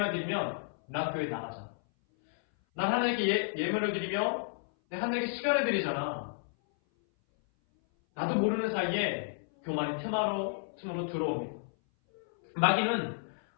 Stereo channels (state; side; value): silent; right; 57 dB below the other